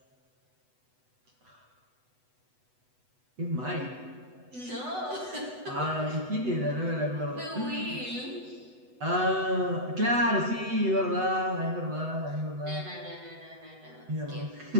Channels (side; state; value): left; late; 8.0 ms